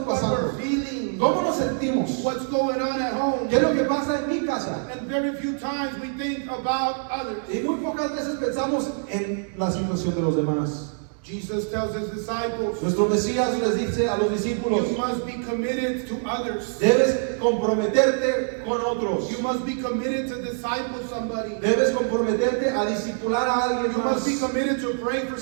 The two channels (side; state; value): left; silent; 62 dB below the other